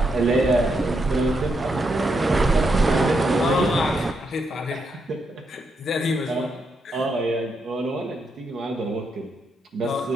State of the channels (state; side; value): normal; both; correlation 0.81